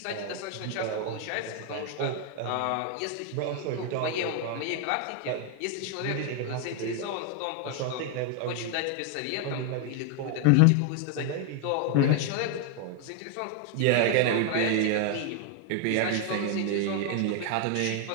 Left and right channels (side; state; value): both; different; correlation 0.01